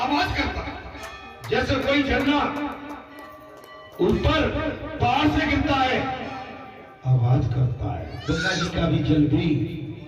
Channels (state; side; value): identical; both; correlation 1.00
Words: करता है, जैसे कोई झरना ऊपर पहाड़ से गिरता है आवाज करता है। गंगा जी का भी जल भी